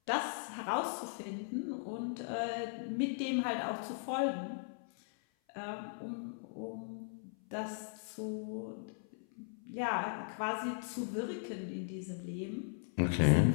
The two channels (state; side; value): silent; right; 52 dB below the other